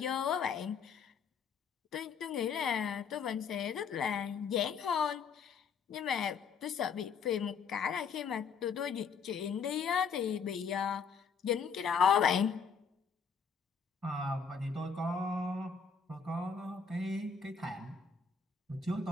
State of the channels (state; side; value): quieter; right; 6.0 dB